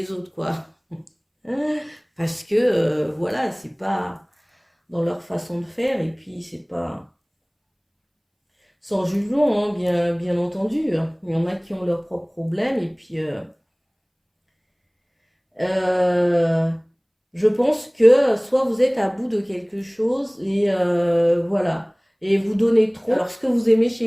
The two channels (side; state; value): both; identical; correlation 1.00